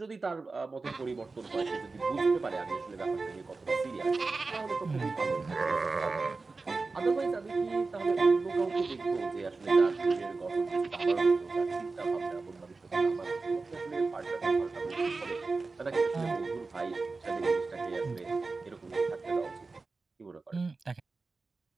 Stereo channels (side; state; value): left; quieter; 3.9 dB